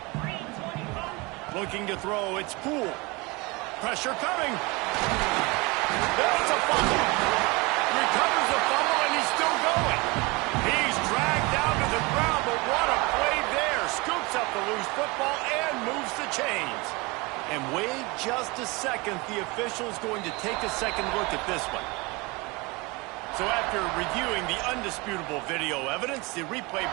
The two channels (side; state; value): left; quieter; 25.7 dB